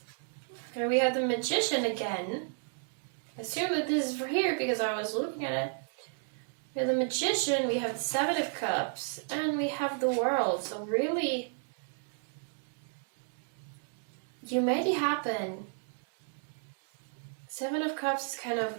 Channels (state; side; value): silent; left; 56 dB below the other